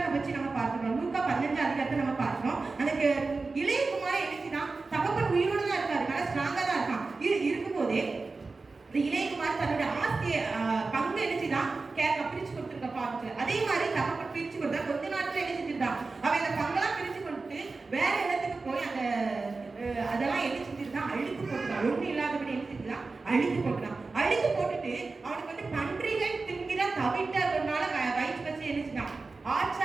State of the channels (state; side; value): quieter; left; 3.9 dB